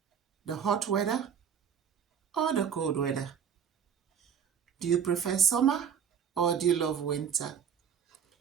The hot weather or the cold weather? Do you prefer summer or do you love winter?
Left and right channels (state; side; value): quieter; left; 7.8 dB